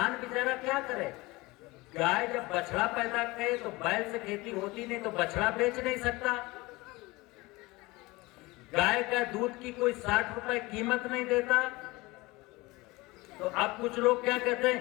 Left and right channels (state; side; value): quieter; right; 22.1 dB